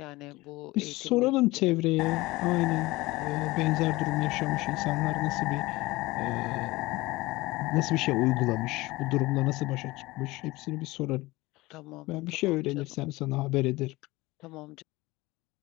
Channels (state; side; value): quieter; right; 20.5 dB